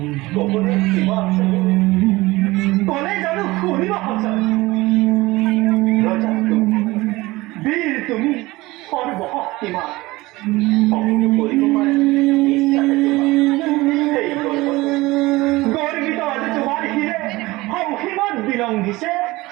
কবলে কিবা আছে কোনে জানো শুনিব সঁচা ৰজা বীৰ তুমি সৰ্বশক্তিমান সকলো কৰিব পাৰে ইচ্ছাতে তোমাৰ সেই গৰ্বিত আজি তোমাৰ শিৰে সংসীমত বিলংঘিছে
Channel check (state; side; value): quieter; left; 20.4 dB